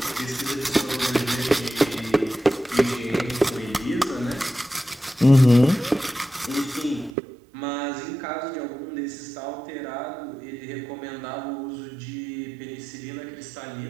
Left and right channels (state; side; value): drops out; left; at 7.2 s